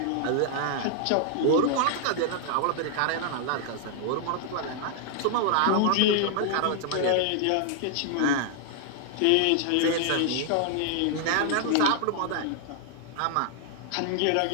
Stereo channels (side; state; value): both; different; correlation -0.01